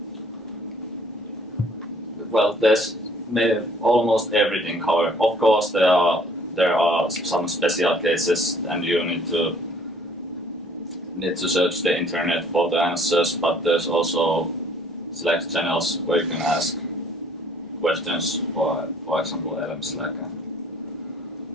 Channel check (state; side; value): normal; both; correlation 0.58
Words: Well, there's almost everything covered. Of course, there are some special cases, and you need to search the internet for the answers. But there's also Slack channels where you can ask questions, for example, Elm Slack and